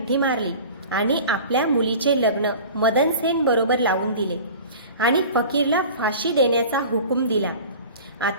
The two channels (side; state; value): both; inverted; correlation -0.40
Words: मारली आणि आपल्या मुलीचे लग्न मदनसेन बरोबर लावून दिले आणि फकीरला फाशी देण्याचा हुकूम दिला.